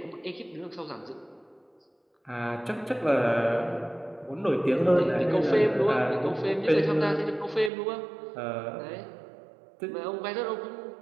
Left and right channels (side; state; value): left; drops out; at 7.7 s